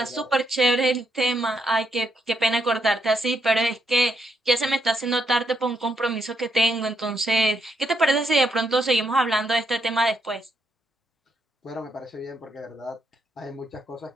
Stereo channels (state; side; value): normal; both; correlation 0.78